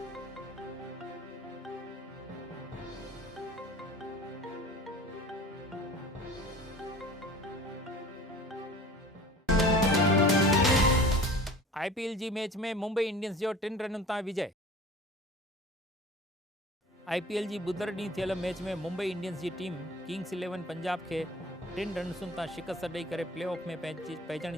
IPL जी मैच में मुंबई इंडियंस जो 3 रन तां विजय। IPL जी बुधर ॾींहुं थियल मैच में मुंबई इंडियंस की टीम किंग्स 11 पंजाब के 3 रन्सुनि तां शिकस्त ॾेई करे प्लेऑफ में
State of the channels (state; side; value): normal; both; correlation 0.42